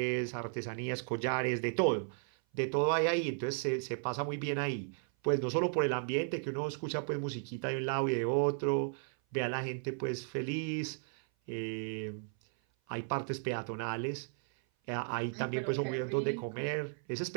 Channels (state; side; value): silent; left; 55 dB below the other